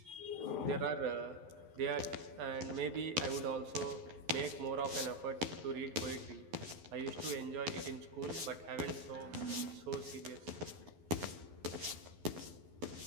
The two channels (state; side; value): late; left; 12 ms